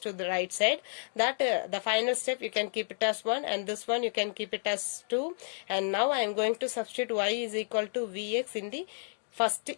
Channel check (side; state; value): right; silent; digital silence